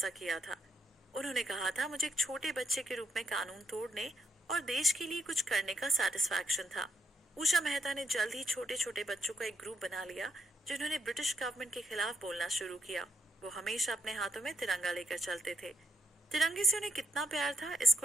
किया था। उन्होंने कहा था, मुझे एक छोटे बच्चे के रूप में कानून तोड़ने और देश के लिए कुछ करने का सेटिस्फैक्शन था। उषा मेहता ने जल्द ही छोटे छोटे बच्चों का एक ग्रुप बना लिया, जिन्होंने ब्रिटिश गवर्नमेंट के खिलाफ बोलना शुरू किया। वो हमेशा अपने हाथों में तिरंगा लेकर चलते थे। तिरंगे से उन्हें कितना प्यार था, इसको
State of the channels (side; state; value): both; normal; correlation 0.77